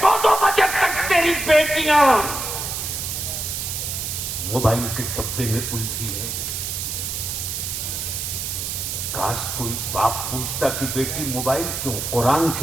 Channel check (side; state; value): right; noise; hiss, 3 dB below the sound